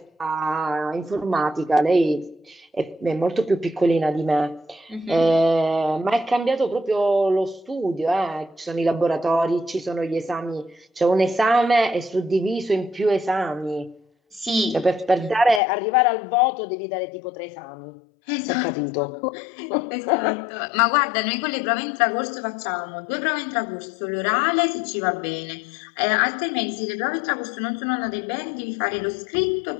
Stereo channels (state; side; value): drops out; right; at 15.6 s